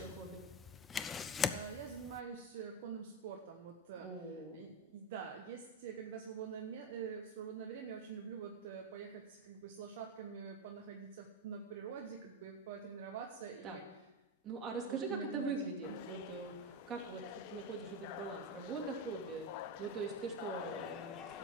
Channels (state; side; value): normal; both; correlation 0.14